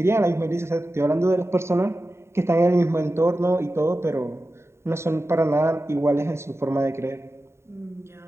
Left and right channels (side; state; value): left; late; 0.13 ms